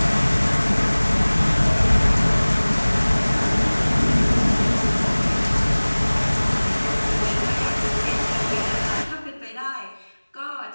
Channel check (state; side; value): inverted; both; correlation -1.00